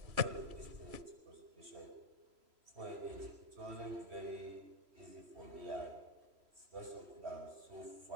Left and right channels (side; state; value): left; late; 3.0 ms